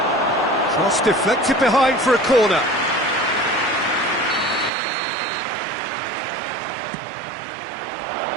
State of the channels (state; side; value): drops out; left; at 4.7 s